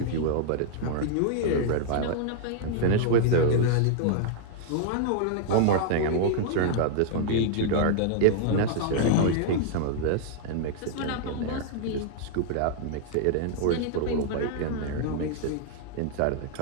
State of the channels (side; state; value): both; different; correlation -0.01